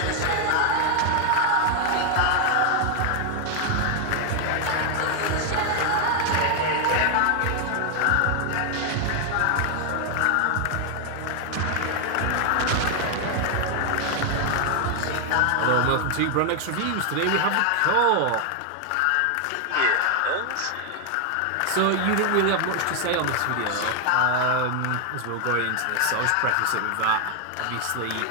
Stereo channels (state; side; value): different; both; correlation 0.00